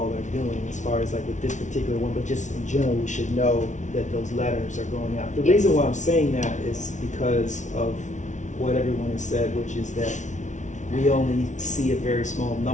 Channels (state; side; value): late; right; 0.36 ms